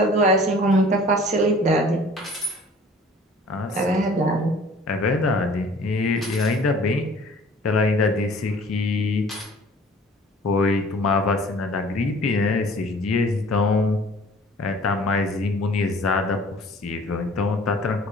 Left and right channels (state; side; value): normal; both; correlation 0.49